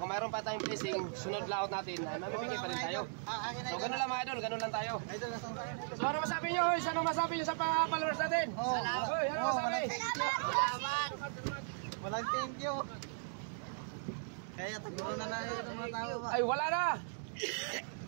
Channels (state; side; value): silent; left; digital silence